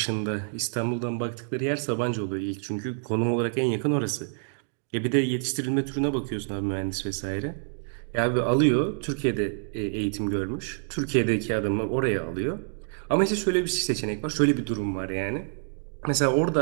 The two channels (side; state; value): left; silent; digital silence